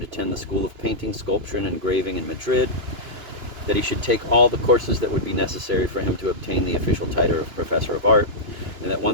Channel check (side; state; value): left; late; 2.9 ms